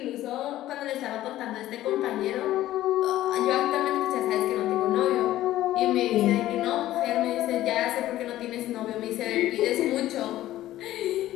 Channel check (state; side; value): quieter; right; 14.4 dB